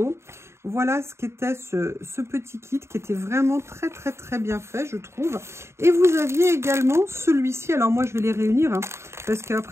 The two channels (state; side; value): late; left; 0.13 ms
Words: Voilà ce qu'était ce petit kit qui était vraiment très bien fait, je trouve. Et vous aviez également celui-ci. Alors moi, je vais les réunir hein, parce